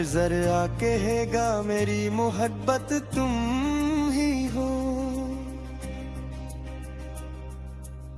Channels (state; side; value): identical; both; correlation 1.00